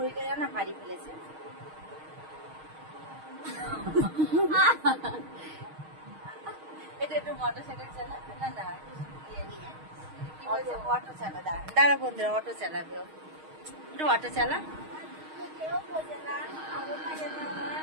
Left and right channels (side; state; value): left; late; 6.4 ms